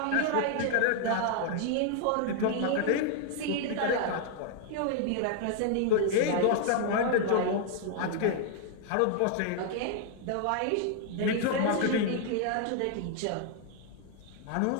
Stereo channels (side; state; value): both; different; correlation 0.00